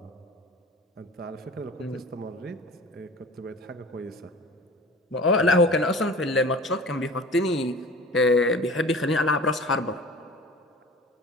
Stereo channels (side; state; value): both; normal; correlation 0.40